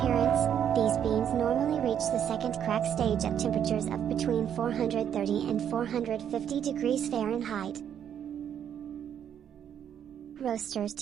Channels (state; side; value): quieter; left; 9.1 dB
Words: these beans normally reach the second crack stage at temperatures of between 430 and 450 degrees Fahrenheit. Roasters